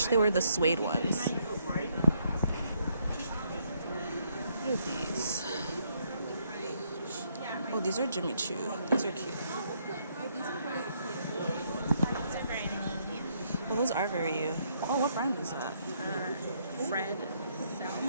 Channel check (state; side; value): inverted; both; correlation -0.72